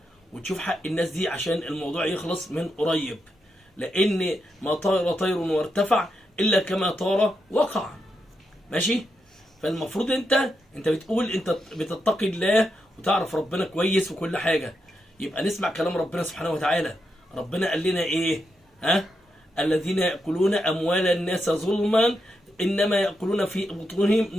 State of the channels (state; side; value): normal; both; correlation 0.84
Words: وتشوف حق الناس دي عشان الموضوع يخلص من قريب، لان ما طار طير وارتفع الا كما طار وقع. ماشي؟ فالمفروض انت بتقول انت بتتقي الله وتعرف ربنا كويس وكل حاجه، يبقى نسمع كلام ربنا سبحانه وتعالى. ربنا قال لنا ايه؟ الذين يأكلون أموال الناس ظلما إنما يأكلون في بطونهم